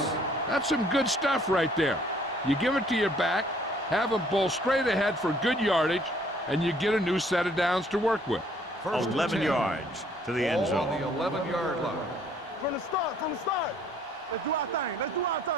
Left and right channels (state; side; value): normal; both; correlation 0.61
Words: That's some good stuff right there. You give it to your back, have him bull straight ahead for good yardage, and you get a new set of downs to work with. 11 yards to the end zone. On the 11-yard line. From the start. Let's do our thing.